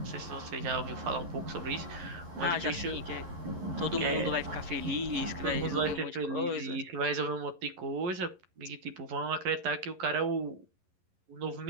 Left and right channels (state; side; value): late; left; 11 ms